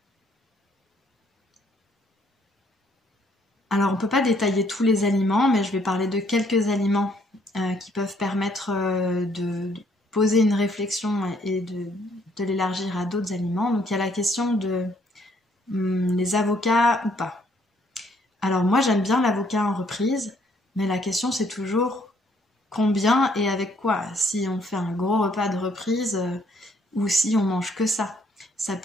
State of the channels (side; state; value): both; normal; correlation 0.67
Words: Alors on peut pas détailler tous les aliments, mais je vais parler de quelques aliments qui peuvent permettre de poser une réflexion et de l'élargir à d'autres aliments. Donc il y a la question de les avocats ou pas. Alors moi j'aime bien l'avocat en reprise, mais la question c'est toujours combien et avec quoi. Si on fait un gros repas de reprise ou si on mange que ça. Ça